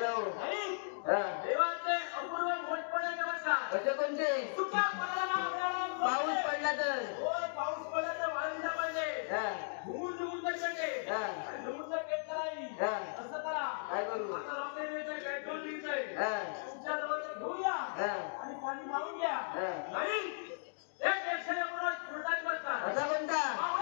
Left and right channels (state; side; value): silent; right; digital silence